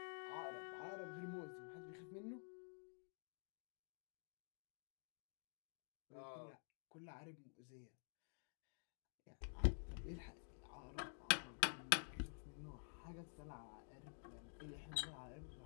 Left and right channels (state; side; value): silent; right; digital silence